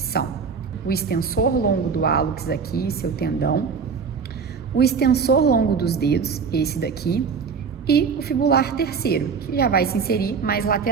são o extensor longo do hálux aqui, seu tendão, o extensor longo dos dedos, esse daqui, e o fibular terceiro, que já vai se inserir mais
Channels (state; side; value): quieter; left; 5.8 dB